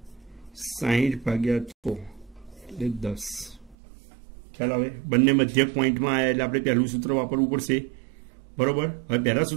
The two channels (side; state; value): left; drops out; at 3.8 s